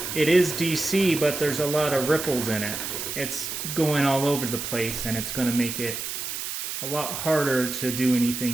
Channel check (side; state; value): right; noise; hiss, 5 dB below the sound